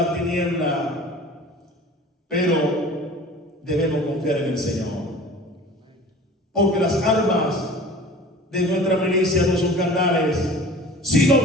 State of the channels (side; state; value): both; normal; correlation 0.42